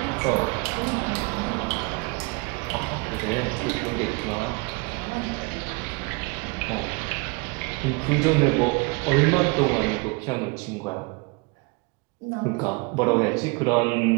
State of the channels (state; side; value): quieter; left; 29.0 dB